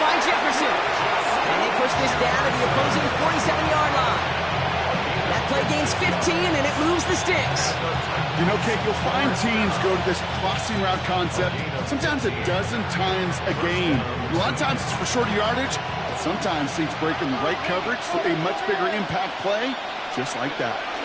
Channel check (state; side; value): identical; both; correlation 1.00